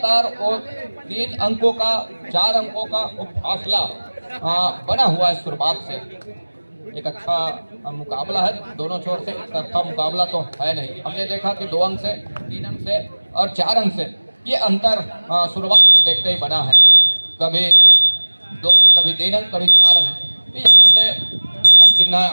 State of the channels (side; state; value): both; inverted; correlation -1.00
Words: वो 3 अंकों का, 4 अंकों का वो फासला बना हुआ है शुरुआत से। एक अच्छा मुकाबला है दोनों छोर से, एक तरफा मुकाबला तो है नहीं। हमने देखा कि 2 अंक से, 3 अंक से और 4 अंक से ये अंतर शुरुआत से देखते ही बना है, कभी 2, कभी 3 अंक, कभी 4 अंक। तो यहाँ से हेमंत सिन्हा